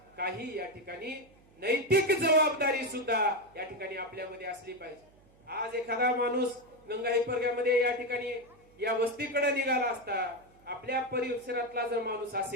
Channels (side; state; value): right; noise; hum, 29 dB below the sound